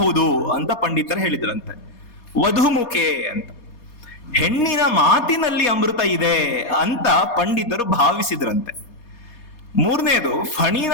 ಅಂತ ಪಂಡಿತರು ಹೇಳಿದ್ರಂತೆ. ವಧುಮುಖೆ ಅಂತ. ಹೆಣ್ಣಿನ ಮಾತಿನಲ್ಲಿ ಅಮೃತ ಇದೆ ಅಂತ ಪಂಡಿತರು ಭಾವಿಸಿದ್ರಂತೆ. ಮೂರನೇದು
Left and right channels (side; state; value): right; late; 4.2 ms